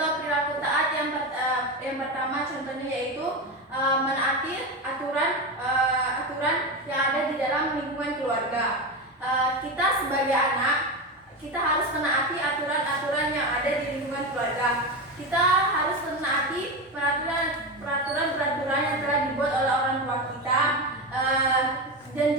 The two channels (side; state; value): both; normal; correlation 0.18